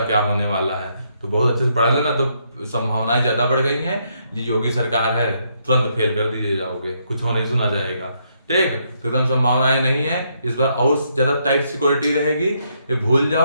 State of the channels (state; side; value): inverted; both; correlation -0.75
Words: क्या होने वाला है। तो बहुत अच्छे से पढ़ा लेना, तो संभावनाएं ज्यादा बढ़ गई हैं। ये योगी सरकार है, तुरंत फेल कर दीजिए जाओगे, कुछ हो नहीं सुना जाएगा। ठीक, तो एकदम संभावनाएं नहीं है। इस बार और ज्यादा टाइट सिक्योरिटी रहेगी। ये भूल